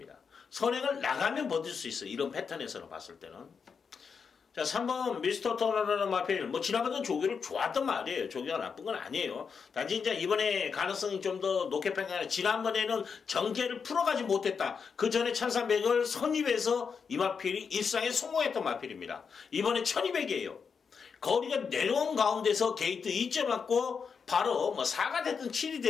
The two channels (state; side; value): quieter; right; 6.0 dB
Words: 선행을 나가면 버틸 수 있어요. 이런 패턴에서는 봤을 때는. 자, 3번 미스터 터너라는 마필. 뭐 지난번에는 조교를 좋았던 말이에요. 조교가 나쁜 건 아니에요. 단지 이제 이번에 가능성이 좀 더 높게 평가하는, 지난번에는 정제를 풀어가지 못했다. 그 전에 1300을 선입해서 이 마필이 일상에 성공했던 마필입니다. 이번에 1200이에요. 거리가 내려온 가운데서 게이트 2점 맞고 바로 뭐 4가 됐든 7이